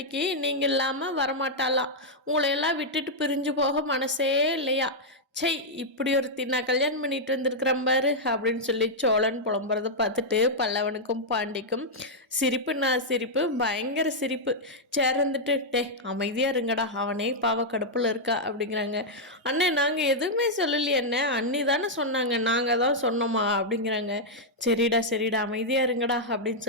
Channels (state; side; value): normal; both; correlation -0.05